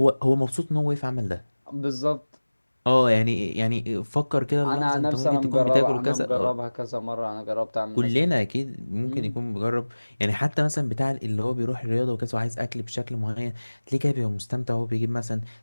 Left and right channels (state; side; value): inverted; both; correlation -1.00